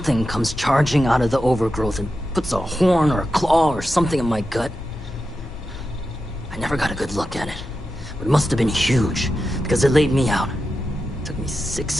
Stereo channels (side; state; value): both; normal; correlation 0.90